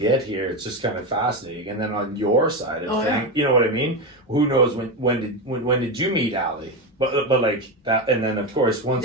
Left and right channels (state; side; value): normal; both; correlation 0.15